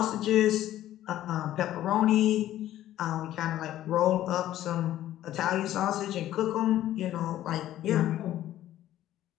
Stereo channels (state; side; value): quieter; right; 13.2 dB